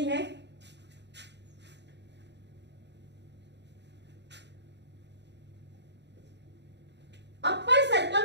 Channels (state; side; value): late; left; 0.51 ms